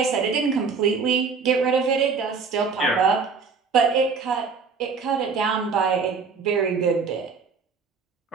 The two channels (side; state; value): left; quieter; 5.2 dB